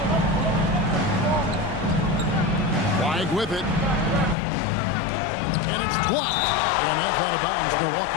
Flag with it. And it's blocked. And that's out of bounds.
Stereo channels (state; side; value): drops out; right; at 4.4 s